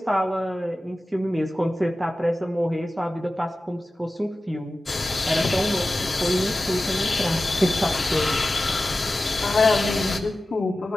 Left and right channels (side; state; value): both; normal; correlation 0.95